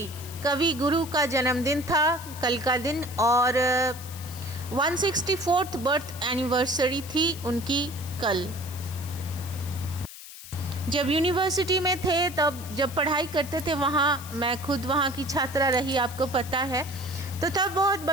गुरु का जन्मदिन था कल का दिन। और 164th बर्थ एनिवर्सरी थी उनकी कल। जब यूनिवर्सिटी में थे, तब जब पढ़ाई करते थे वहाँ, मैं खुद वहाँ की छात्रा रही, आपको पता है। तो तब बहुत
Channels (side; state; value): left; noise; hiss, 14 dB below the sound